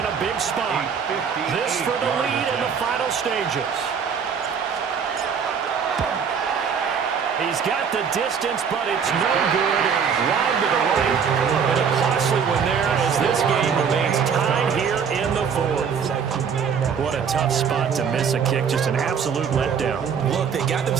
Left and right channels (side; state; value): left; quieter; 6.8 dB